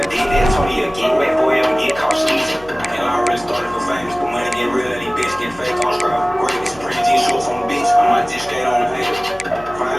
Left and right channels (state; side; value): noise; left; hum, 21 dB below the sound